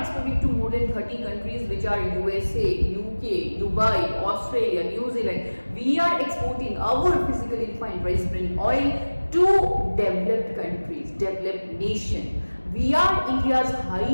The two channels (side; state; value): both; inverted; correlation -1.00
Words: to more than 30 countries, which are USA, UK, Dubai, Australia, New Zealand. We are exporting our physically refined rice bran oil to developed countries, developed nation. We are India's